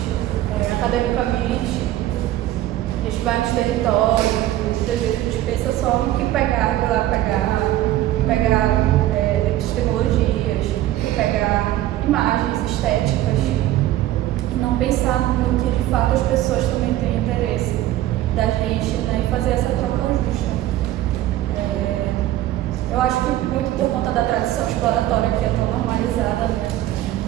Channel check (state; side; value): quieter; left; 14.3 dB